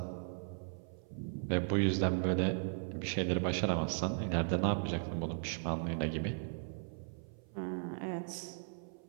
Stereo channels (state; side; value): silent; left; 53 dB below the other